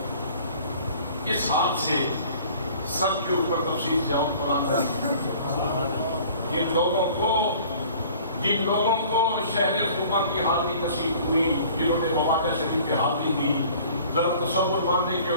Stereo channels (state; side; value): inverted; both; correlation -0.50